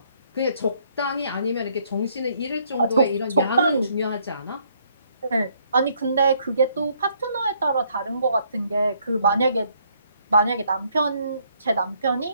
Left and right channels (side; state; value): both; inverted; correlation -0.68